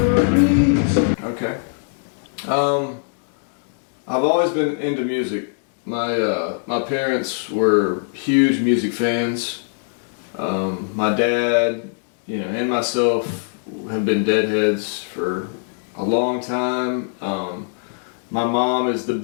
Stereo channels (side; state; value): right; silent; digital silence